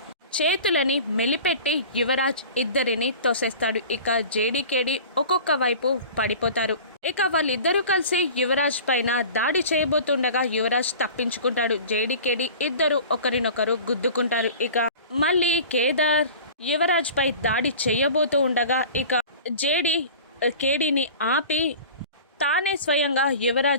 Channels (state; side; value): inverted; both; correlation -0.40